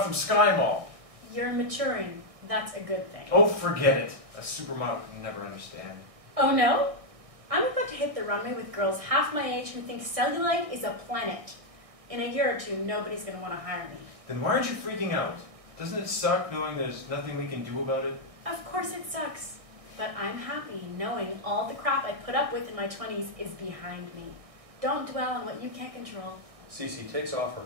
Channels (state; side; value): late; left; 1.6 ms